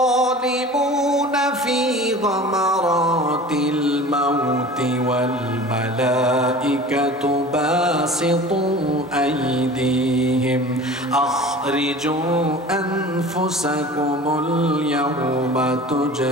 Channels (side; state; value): both; normal; correlation 0.40